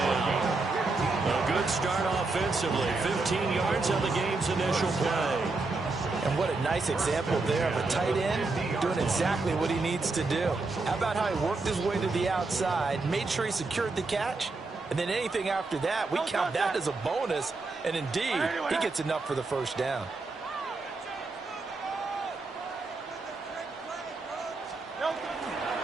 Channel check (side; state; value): left; quieter; 3.6 dB